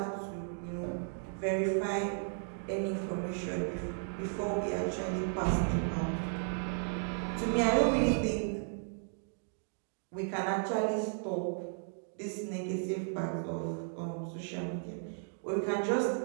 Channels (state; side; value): silent; left; digital silence